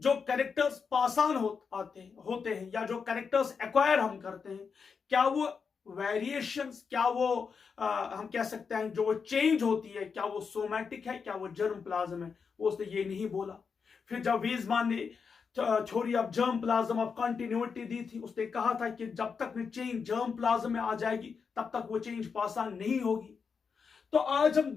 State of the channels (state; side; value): quieter; right; 5.7 dB